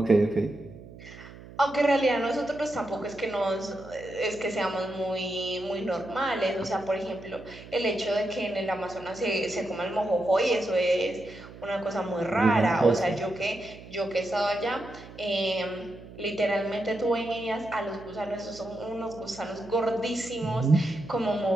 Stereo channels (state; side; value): noise; right; hum, 17 dB below the sound